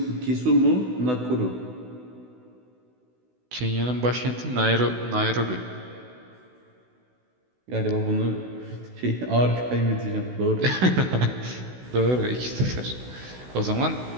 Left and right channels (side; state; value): left; late; 16 ms